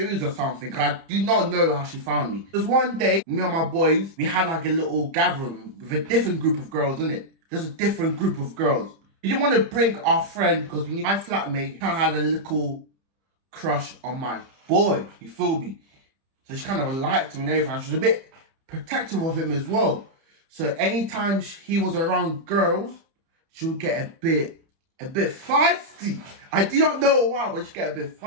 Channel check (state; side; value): late; left; 30 ms